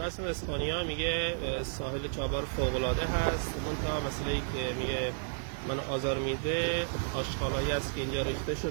هستن از اسپانیا، میگه ساحل چابهار فوق‌العاده هست. منتها مسئله‌ای که میگه من آزار میده آشغالایی است که اینجا ریخته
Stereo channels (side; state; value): left; silent; digital silence